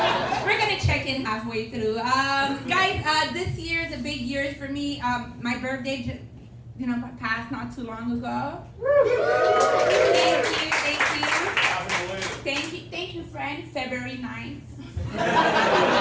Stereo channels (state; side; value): identical; both; correlation 1.00